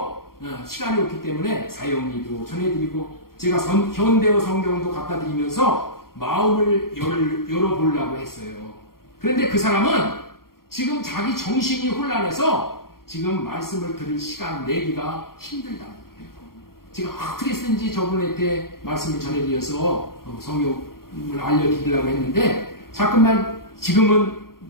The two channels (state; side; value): late; right; 0.93 ms